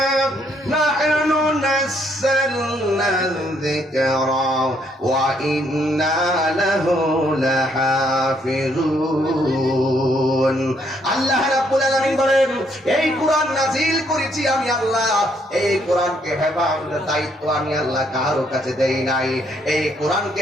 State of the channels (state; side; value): normal; both; correlation 0.70